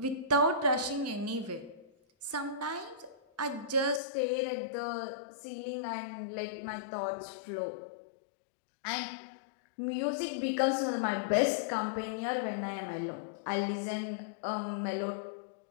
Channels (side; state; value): right; drops out; at 4.0 s